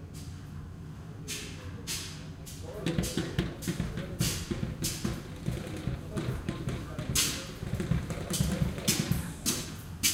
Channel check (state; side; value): identical; both; correlation 1.00